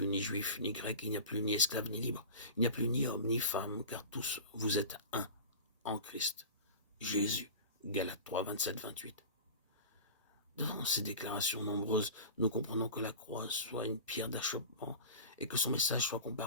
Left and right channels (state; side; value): inverted; both; correlation -0.33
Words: ni juif, ni grec, il n'y a plus ni esclave, ni libre, il n'y a plus ni homme, ni femme, car tous vous êtes un en Christ. Jésus, Galates 3, 27, 28. Devant ces déclarations nombreuses, nous comprenons que la croix soit une pierre d'achoppement et que son message soit